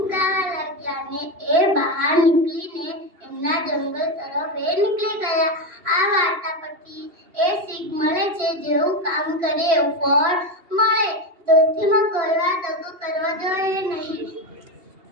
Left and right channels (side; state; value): left; late; 2.7 ms